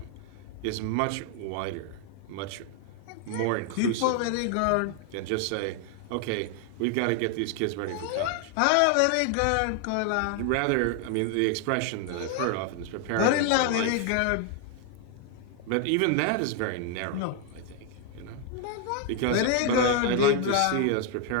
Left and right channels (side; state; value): both; different; correlation 0.01